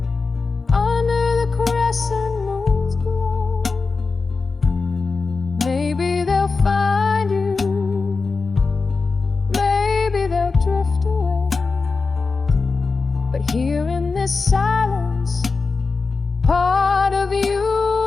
under the crescent moon's glow. Maybe they'll find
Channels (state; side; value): quieter; right; 4.3 dB